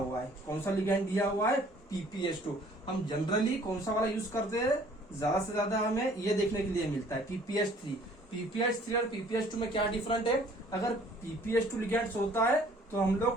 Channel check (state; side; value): normal; both; correlation 0.56